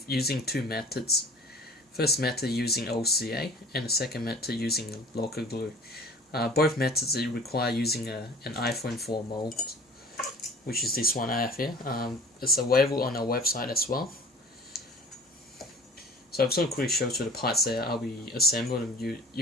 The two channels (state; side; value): normal; both; correlation 0.46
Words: using two methods. First method using OCA and the second method using LOCA glue. Both methods require using an iPhone 4 mold, which is this one I have here. It's available on our website as well. So I'm just going to quickly show you the parts there. I'll be assembling